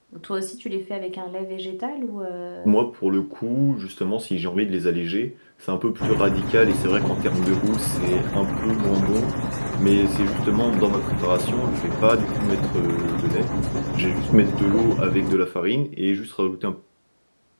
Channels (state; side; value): inverted; both; correlation -1.00